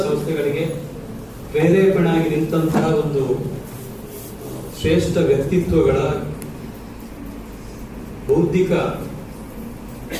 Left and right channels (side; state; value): both; identical; correlation 1.00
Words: ಸಂಸ್ಥೆಗಳಿಗೆ ಪ್ರೇರೇಪಣೆಯಾಗಿ ನಿಂತಹ ಒಂದು ಶ್ರೇಷ್ಠ ವ್ಯಕ್ತಿತ್ವಗಳ ಬೌದ್ಧಿಕ